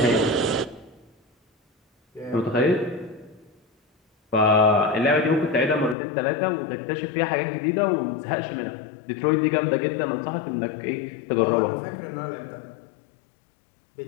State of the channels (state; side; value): drops out; right; at 6.0 s